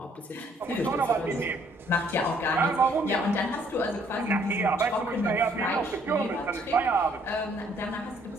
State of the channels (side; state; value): both; normal; correlation 0.64